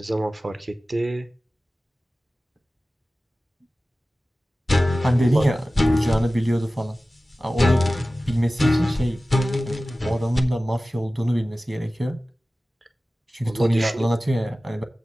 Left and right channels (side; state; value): both; normal; correlation 0.96